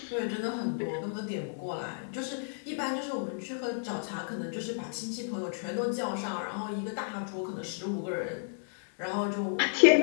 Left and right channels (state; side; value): silent; right; digital silence